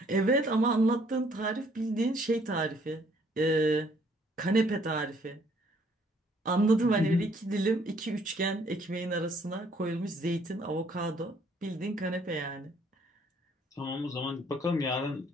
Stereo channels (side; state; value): both; normal; correlation 0.63